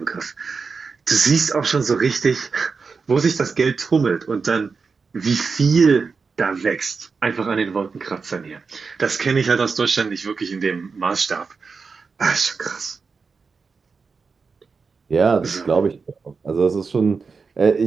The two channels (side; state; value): left; quieter; 4.9 dB